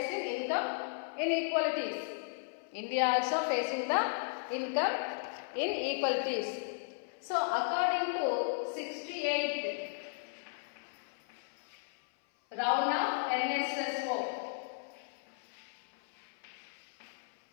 income inequalities. India also facing the income inequalities. So according to 68th round of NSSO.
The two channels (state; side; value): silent; right; 54 dB below the other